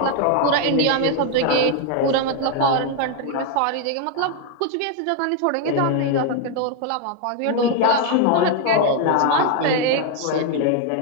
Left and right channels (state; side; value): different; both; correlation 0.01